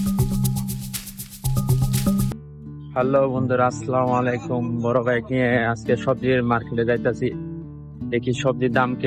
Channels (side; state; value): both; identical; correlation 1.00